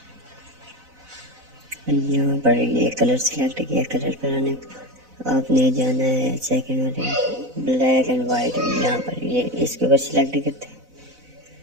यहाँ पर ये कलर सिलेक्ट किया। कलर पर आने आपने जाना है सेकंड वाले ब्लैक एंड वाइट। यहाँ पर ये इसके ऊपर सिलेक्ट करते हैं।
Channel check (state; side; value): late; left; 4.0 ms